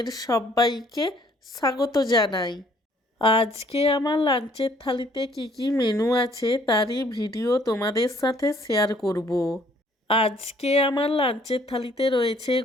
সবাইকে স্বাগত জানাই। আজকে আমার লাঞ্চের থালিতে কি কি মেনু আছে তারই ভিডিও তোমাদের সাথে শেয়ার করব। আজকে আমার লাঞ্চের থালিতে রয়েছে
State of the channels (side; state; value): both; normal; correlation 0.61